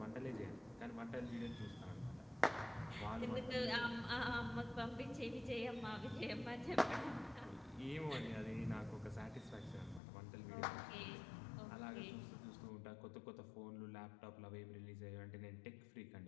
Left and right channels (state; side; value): drops out; right; at 10.0 s